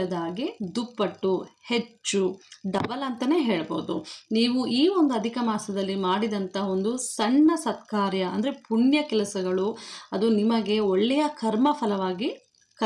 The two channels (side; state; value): both; identical; correlation 1.00